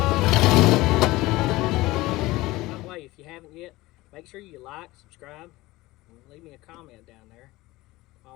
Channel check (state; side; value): quieter; right; 19.3 dB